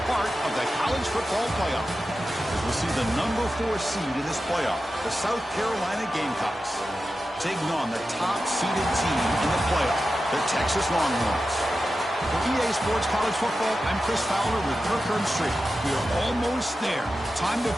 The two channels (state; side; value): normal; both; correlation 0.92